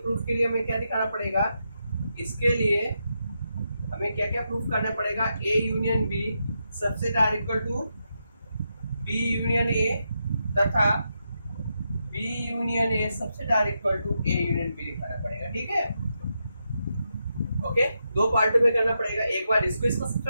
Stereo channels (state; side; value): inverted; both; correlation -0.85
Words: के लिए हमें क्या दिखाना पड़ेगा, इसके लिए हमें क्या क्या प्रूफ करना पड़ेगा, a union b subset r equal to b union a तथा b union a subset r equal to a union b दिखाना पड़ेगा। ठीक है, ओके, दो पार्टों में करना पड़ेगा, एक बार इसको इसका